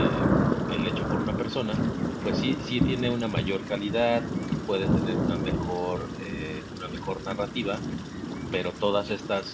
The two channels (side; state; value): both; identical; correlation 1.00